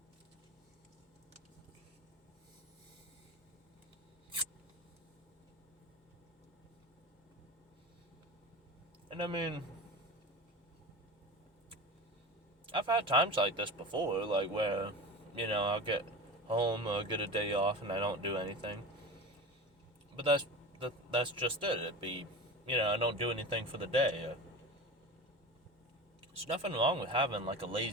And I mean, I've had times like this before, like where, I'll get home or get a day off and I don't do anything. But that's just it. It'd be, I don't do anything for the day. There's nothing wrong with having like a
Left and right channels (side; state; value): both; normal; correlation 0.30